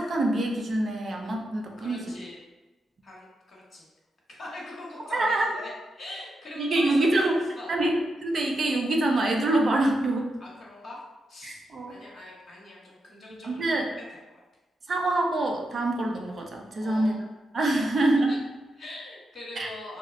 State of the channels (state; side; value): normal; both; correlation 0.85